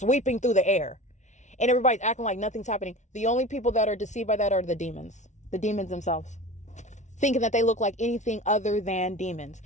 through the air. And everybody's acting like nothing's happening. The only people that are deceived by that are the demons themselves. Thinking that they look like anything other than demons,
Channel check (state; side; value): late; right; 0.34 ms